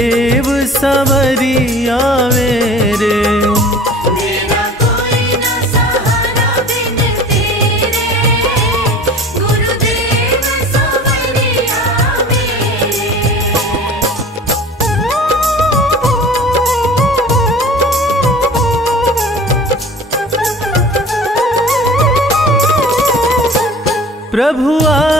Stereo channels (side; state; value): both; normal; correlation 0.42